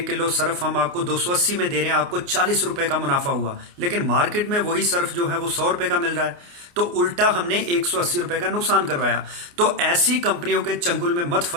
किलो सर्फ हम आपको 280 में दे रहे हैं, आपको 40 रुपए का मुनाफा हुआ। लेकिन मार्केट में वही सर्फ जो है वो 100 रुपए का मिल रहा है, तो उल्टा हमने 180 रुपए का नुकसान करवाया। तो ऐसी कंपनियों के चंगुल में मत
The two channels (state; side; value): late; left; 29 ms